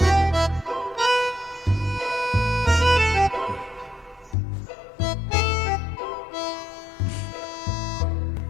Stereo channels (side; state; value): right; drops out; at 4.4 s